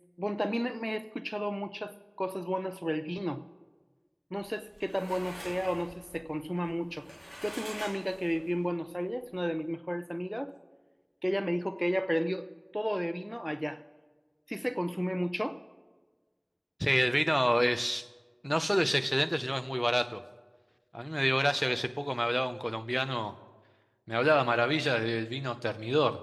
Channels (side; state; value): both; identical; correlation 1.00